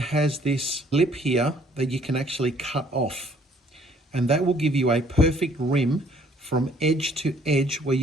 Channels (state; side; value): normal; both; correlation 0.61